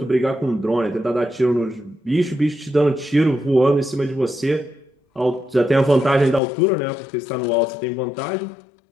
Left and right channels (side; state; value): right; drops out; at 6.4 s